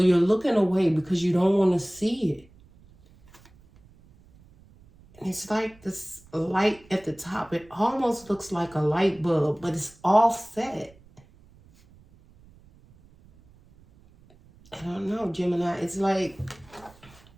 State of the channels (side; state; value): right; noise; rumble, 27 dB below the sound